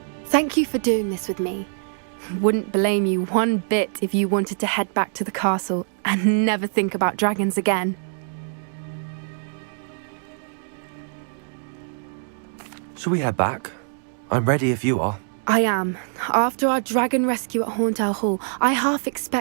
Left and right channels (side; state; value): left; silent; digital silence